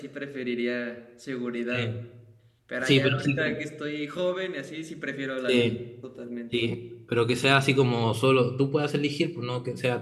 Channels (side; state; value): both; identical; correlation 1.00